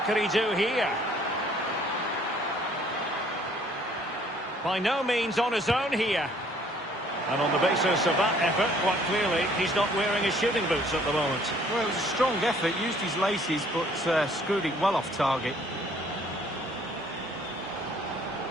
can he do here? By no means on his own here. And on the basis of that effort, quite clearly, he's not wearing his shooting boots at the moment. Well, it was a strong effort, used his laces, but screwed it well off target.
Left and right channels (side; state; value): both; normal; correlation 0.59